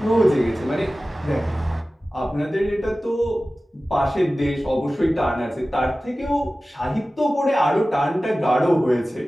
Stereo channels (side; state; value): both; normal; correlation 0.96